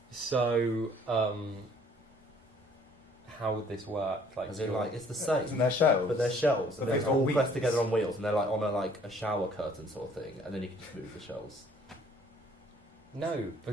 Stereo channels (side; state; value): both; normal; correlation 0.58